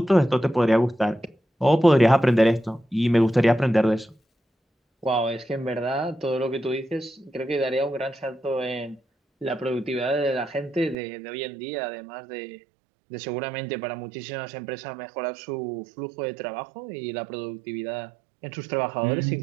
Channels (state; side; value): drops out; left; at 11.0 s